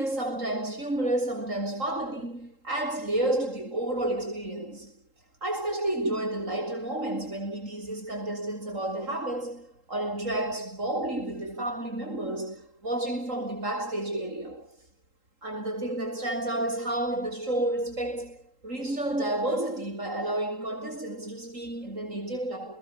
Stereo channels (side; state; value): left; late; 3.8 ms